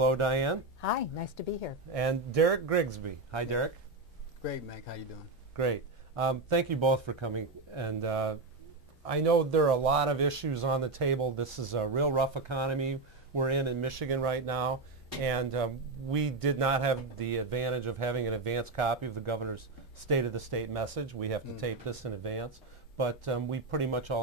Diane. Hi, nice to be here. And Derek Grigsby. Hi, Derek. Great, Mac. How you doing? Great. Thank you both for coming. And I know there are a lot of issues on the table. This is a real rough economy we're in Michigan right now. And we did not have the advantage of having an advance copy of the governor's State of the State message. We have to tape this in advance. But we pretty much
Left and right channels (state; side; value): quieter; left; 3.3 dB